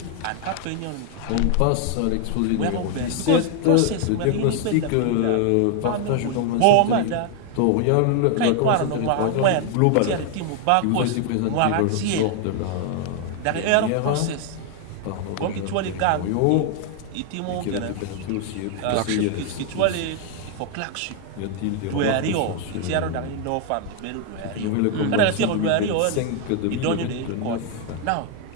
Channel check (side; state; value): both; different; correlation 0.00